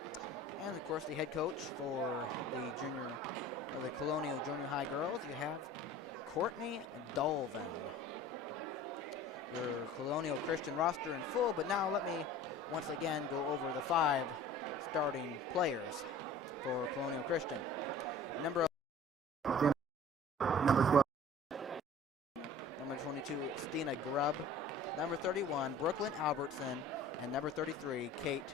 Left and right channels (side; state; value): both; normal; correlation 0.44